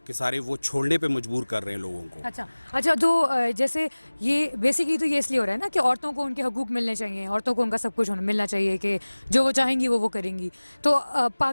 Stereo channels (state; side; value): inverted; both; correlation -1.00